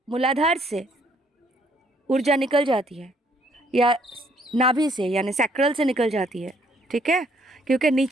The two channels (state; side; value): normal; both; correlation 0.66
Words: मूलाधार से ऊर्जा निकल जाती है या नाभि से यानी सैक्रल से निकल जाती है, ठीक है, क्योंकि